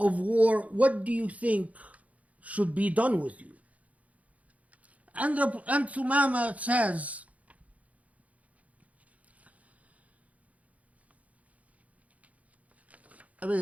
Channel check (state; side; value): late; left; 0.069 ms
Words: war. What do you think should be done with you? And Thumama says, I